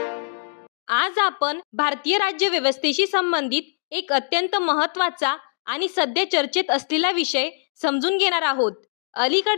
आज आपण भारतीय राज्यव्यवस्थेशी संबंधित एक अत्यंत महत्त्वाचा आणि सध्या चर्चेत असलेला विषय समजून घेणार आहोत.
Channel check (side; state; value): right; silent; 61 dB below the other